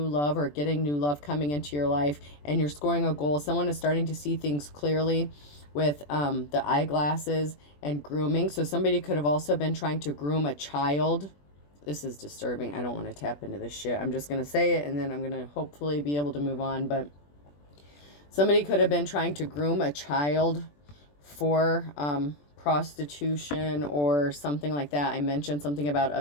love or getting new love coming into your life, and you're scoring a goal. Someone is starting to see things clearly with the eyeglasses and grooming. So somebody could have also been trying to groom a child. This is disturbing. I don't want to tap into this shit. I'm just going to say it, and then I'm going to hopefully be able to move on. But somebody could have been trying to groom a child for prostitution or something like that. I mentioned something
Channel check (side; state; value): right; late; 21 ms